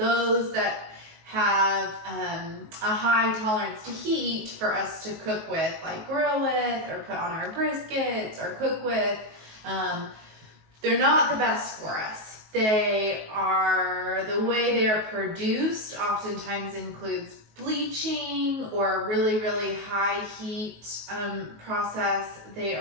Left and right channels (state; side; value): late; left; 19 ms